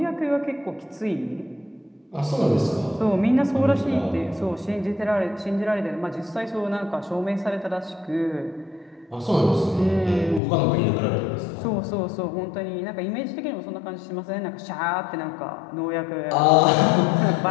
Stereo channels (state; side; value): drops out; right; at 10.4 s